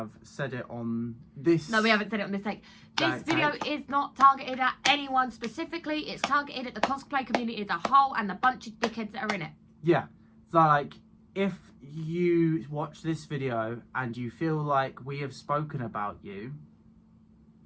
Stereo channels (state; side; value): identical; both; correlation 1.00